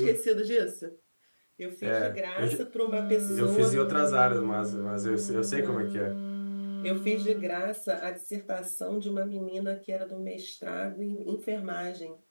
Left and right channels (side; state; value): both; inverted; correlation -1.00